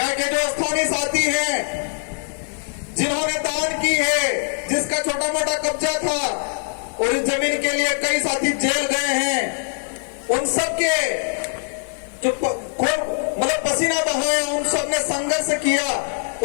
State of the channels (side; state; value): right; silent; digital silence